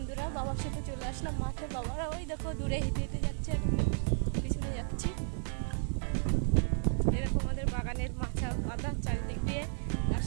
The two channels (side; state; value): left; silent; digital silence